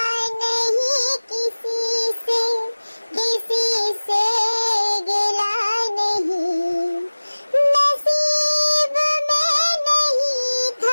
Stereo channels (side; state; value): both; inverted; correlation -1.00